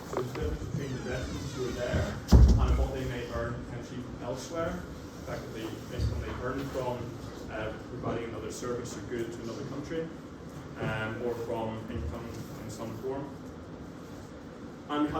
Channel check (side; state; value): both; identical; correlation 1.00